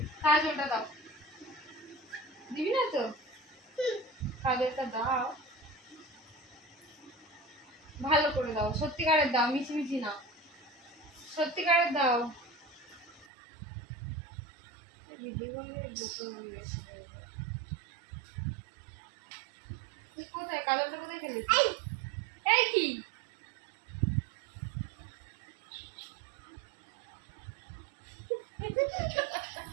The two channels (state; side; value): drops out; left; at 13.2 s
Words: কাজলটা দাও। দিবি না তো? কাজলটা দাও, ভালো করে দাও, সত্যিকারের দাও, মিছিমিছি না, সত্যিকারের দাও। কোথায় কাজলটা কোথায় খেলেছি? এই কি